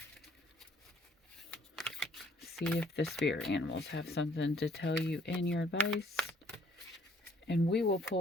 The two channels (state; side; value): normal; both; correlation 0.61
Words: See if the spirit animals have something to tell you in your advice. And we will